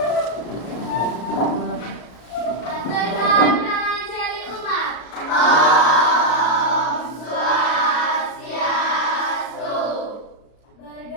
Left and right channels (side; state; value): right; late; 33 ms